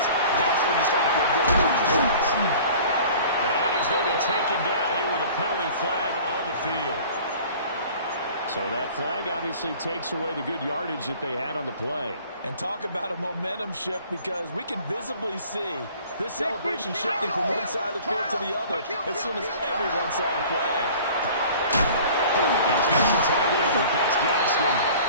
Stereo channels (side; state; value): both; inverted; correlation -0.47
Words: That's when you start to feel good about yourselves. And he's going to be taken down here with a penalty flag on the field. So that flag obviously takes away the good yardage that they had on the play. And talk about a momentum shift, because we can visibly see this celebration shifting from one side of the field to the other as soon as everyone saw the flag. He's got the tight end. That's Gaskin.